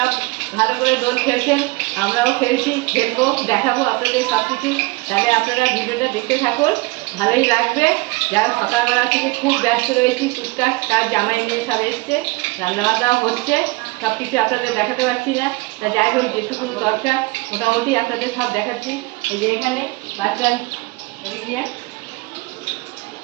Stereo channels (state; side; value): quieter; left; 24.0 dB